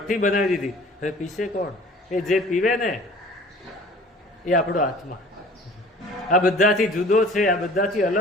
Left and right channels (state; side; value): normal; both; correlation 0.48